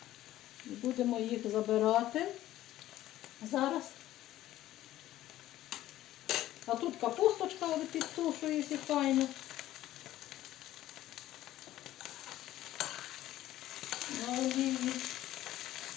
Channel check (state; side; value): quieter; right; 14.2 dB